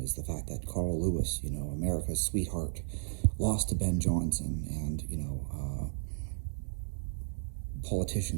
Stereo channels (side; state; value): left; silent; digital silence